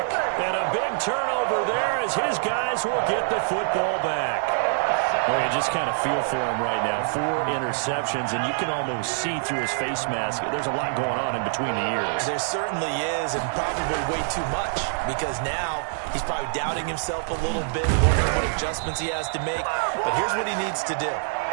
And a big turnover there as his guys will get the football back. Well, you just kind of feel for him right now. 4 interceptions, and you can almost see through his face mask. There's a lot going on in between the ears. There certainly is, and probably way too much, because now he's probably doubting himself a little bit, wondering what adjustments he has to make. But here's what he needs to do.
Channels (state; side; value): silent; left; digital silence